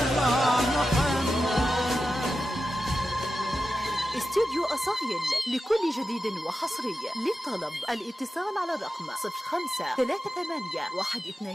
محمد. استوديو أصايل لكل جديد وحصري. للطلب الاتصال على الرقم 05 38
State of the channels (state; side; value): normal; both; correlation 0.91